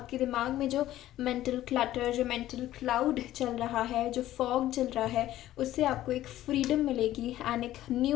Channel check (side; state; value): right; quieter; 14.0 dB